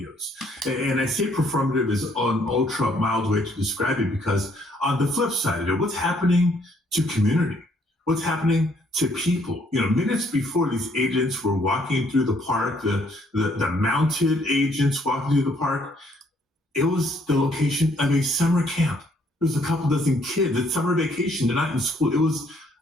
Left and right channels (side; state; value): both; normal; correlation 0.66